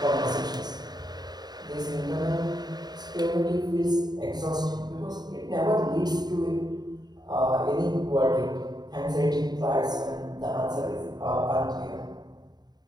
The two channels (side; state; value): left; late; 0.20 ms